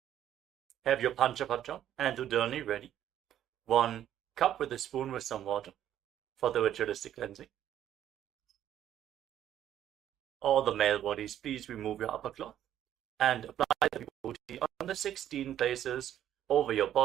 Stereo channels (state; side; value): quieter; left; 11.1 dB